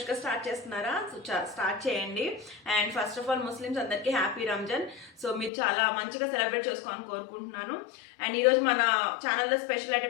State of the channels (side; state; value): right; drops out; at 5.5 s